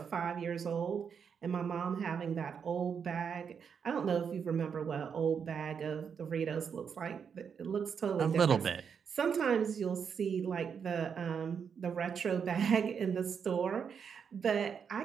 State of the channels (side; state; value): left; quieter; 6.9 dB